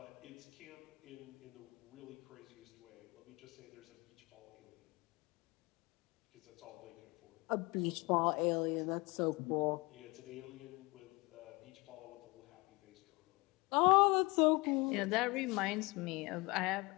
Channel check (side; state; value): right; quieter; 25.5 dB